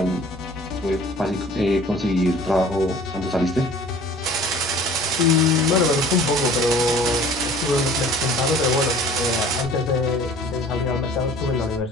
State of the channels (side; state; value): both; normal; correlation 0.48